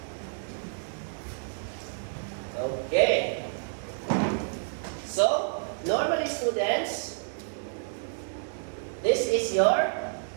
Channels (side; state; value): left; silent; digital silence